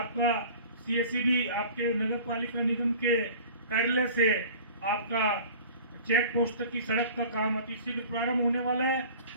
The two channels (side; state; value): both; inverted; correlation -0.43